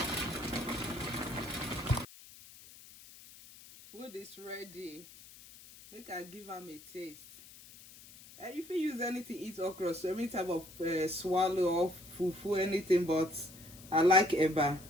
Food is ready. Make I give them a taste. And if you use anything, eat okra, so any type of swallow or fufu, anything, but I like eba.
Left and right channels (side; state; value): left; noise; hiss, 19 dB below the sound